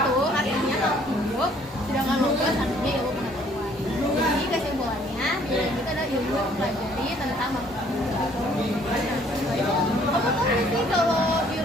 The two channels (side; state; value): both; normal; correlation 0.61